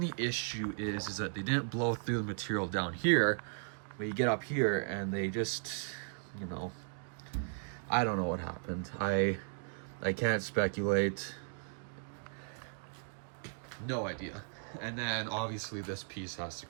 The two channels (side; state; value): left; silent; digital silence